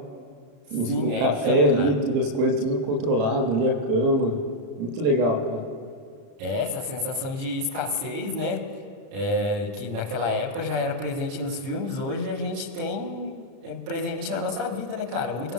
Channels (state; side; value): late; left; 34 ms